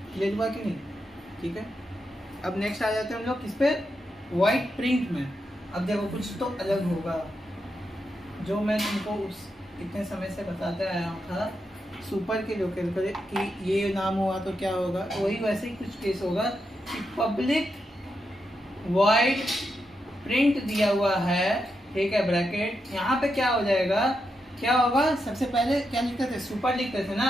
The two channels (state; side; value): normal; both; correlation 0.85